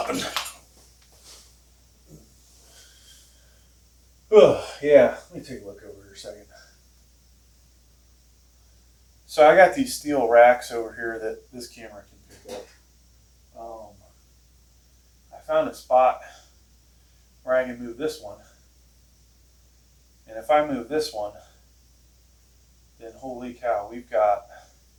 Oh, yeah, let me take a look over here a second. So I got these steel racks over here that this camera can pick up. I found a spot where I can move this one. And if I move this one, then holy cow, we're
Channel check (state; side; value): identical; both; correlation 1.00